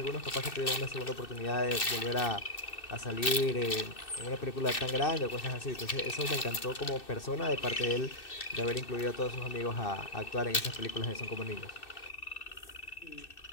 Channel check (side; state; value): right; late; 2.6 ms